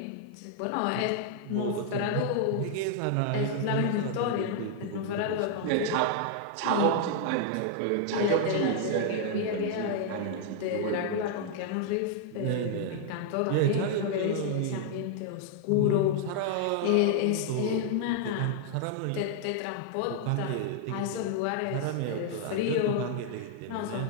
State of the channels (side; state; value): both; different; correlation -0.01